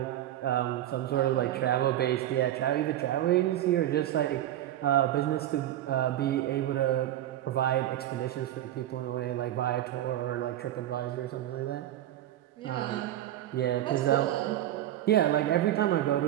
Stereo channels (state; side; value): quieter; left; 12.8 dB